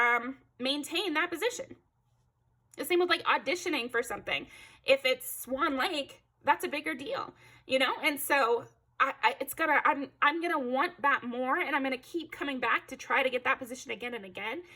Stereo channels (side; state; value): both; identical; correlation 1.00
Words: maintain that position. The same with like auditioning for something. If it's Swan Lake, that's a bigger deal, you know? And so I'm gonna want that more, and I'm gonna keep coming back to try to get that position again and again,